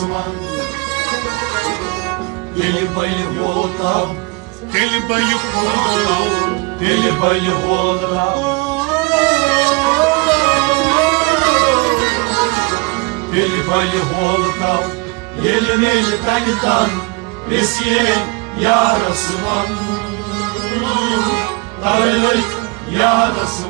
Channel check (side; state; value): left; quieter; 28.1 dB